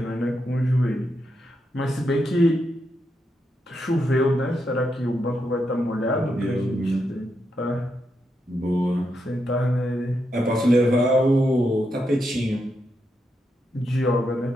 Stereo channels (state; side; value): normal; both; correlation 0.83